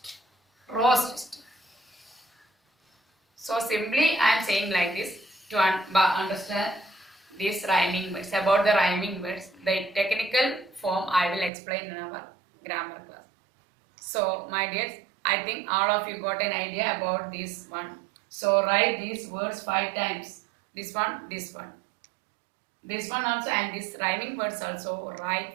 roast. So simply I am saying like this to understand these rhyming words. About the rhyming words, the technical form I will explain in our grammar class. So my dears, I think all of you got an idea about this one. So write these words 5 times. This one, this one. This one also and this rhyming words also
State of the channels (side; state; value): left; drops out; at 11.5 s